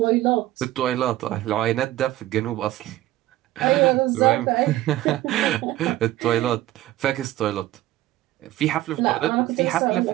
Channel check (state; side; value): quieter; left; 15.3 dB